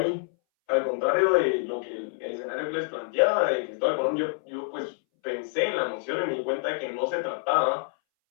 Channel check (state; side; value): silent; right; 60 dB below the other